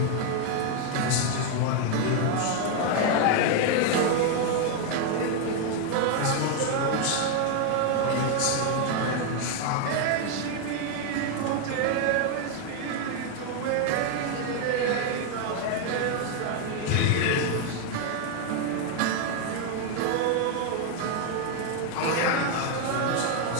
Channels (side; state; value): both; different; correlation 0.01